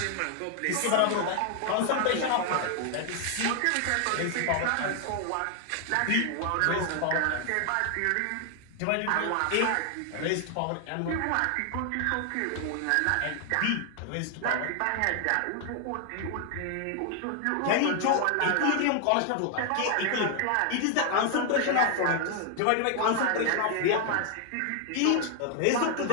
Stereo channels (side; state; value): both; different; correlation 0.00